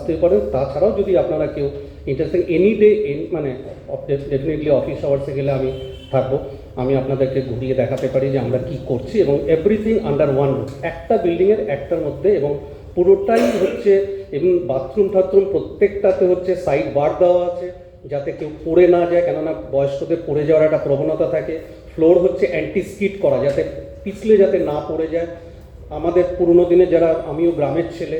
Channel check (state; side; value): identical; both; correlation 1.00